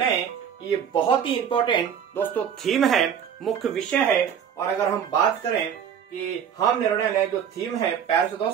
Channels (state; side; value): quieter; left; 8.3 dB